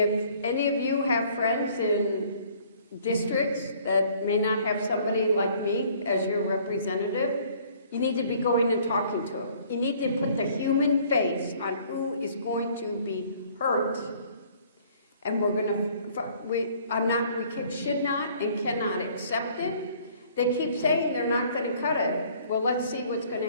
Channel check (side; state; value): both; inverted; correlation -0.57